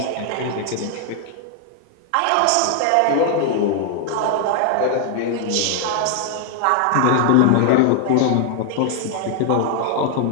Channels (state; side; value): different; both; correlation 0.00